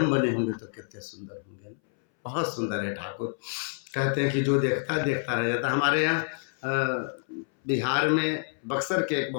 बने होंगे तो कितने सुंदर होंगे ना। बहुत सुंदर है ठाकुर। कहते हैं कि जो देखता देखता रह जाता। हमारे यहाँ बिहार में बक्सर के एक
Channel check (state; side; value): silent; right; 59 dB below the other